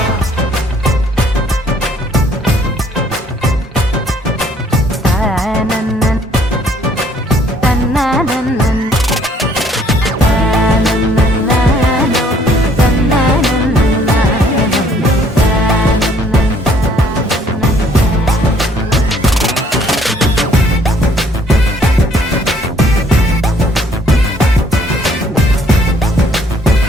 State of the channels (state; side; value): normal; both; correlation 0.62